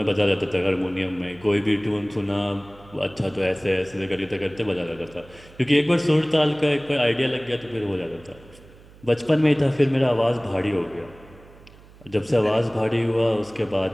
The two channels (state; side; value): noise; right; hum, 23 dB below the sound